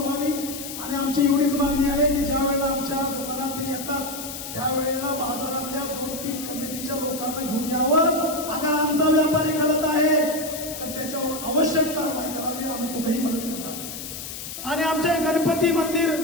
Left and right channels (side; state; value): left; noise; hiss, 9 dB below the sound